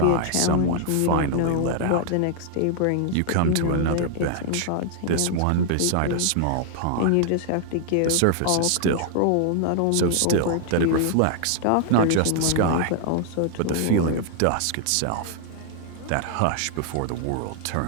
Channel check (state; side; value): different; both; correlation 0.00